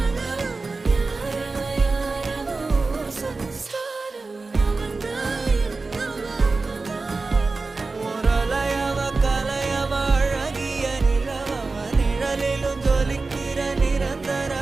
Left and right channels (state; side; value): quieter; left; 3.8 dB